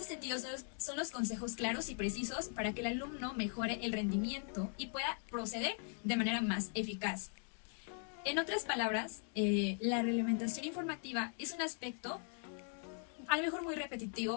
sentido son los consejos claros y precisos para que el alumno mejore el rendimiento y pueda proceder de manera más eficaz. En otras palabras, la realimentación informativa es un aspecto a lo mejor muy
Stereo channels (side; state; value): right; silent; 51 dB below the other